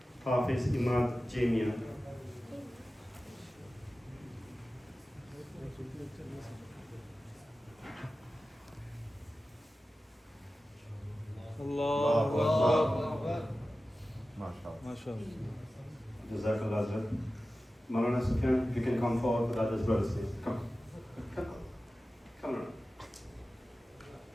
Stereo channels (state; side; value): normal; both; correlation 0.95